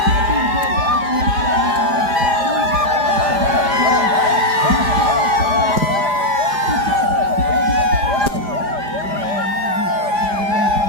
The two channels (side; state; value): left; late; 4.9 ms